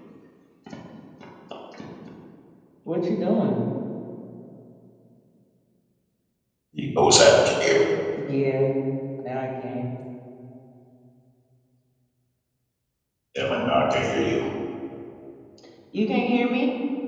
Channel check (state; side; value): identical; both; correlation 1.00